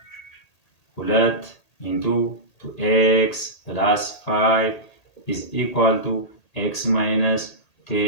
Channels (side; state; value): right; late; 1.8 ms